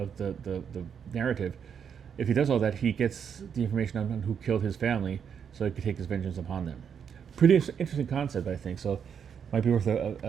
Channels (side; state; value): left; quieter; 7.5 dB